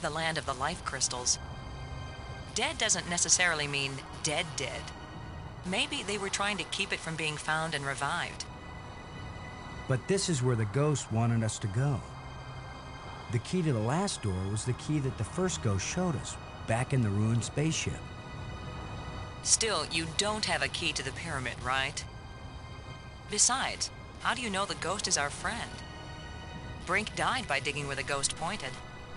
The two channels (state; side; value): identical; both; correlation 1.00